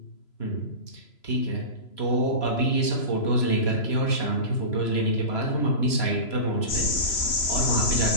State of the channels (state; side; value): late; right; 3.0 ms